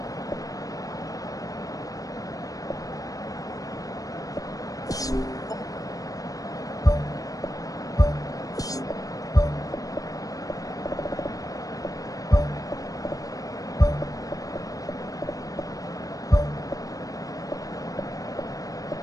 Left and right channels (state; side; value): late; right; 0.17 ms